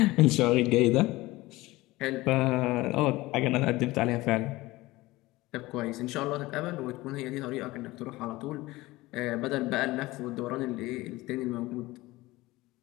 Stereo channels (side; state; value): right; quieter; 19.5 dB